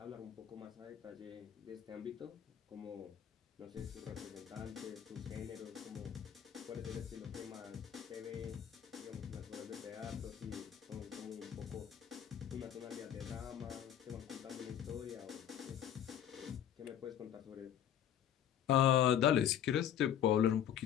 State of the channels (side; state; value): right; quieter; 9.8 dB